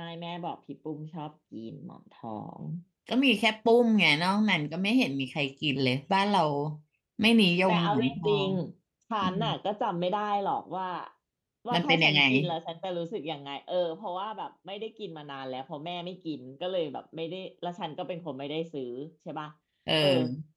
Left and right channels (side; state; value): both; identical; correlation 1.00